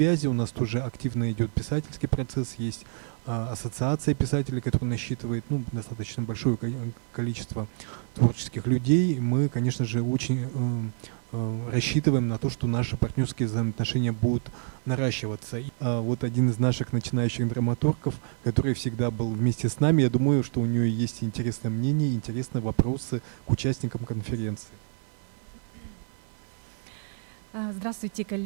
У нас тоже активно идет писательский процесс, есть ассоциация писателей, которая насчитывает достаточно большое количество творческих людей. Мы, конечно же, очень рассчитываем на то, что наши партнерские взаимоотношения будут наращиваться. Вот один из наших начинающих драматургов, который всегда был вместе с нами, я думаю, что у нее есть интересное мнение, интересные вопросы к участникам конференции. Здравствуйте,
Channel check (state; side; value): silent; left; 59 dB below the other